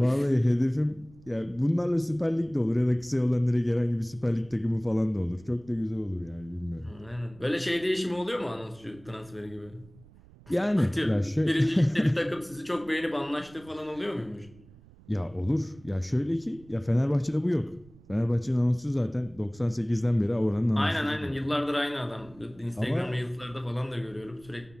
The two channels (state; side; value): noise; right; rumble, 24 dB below the sound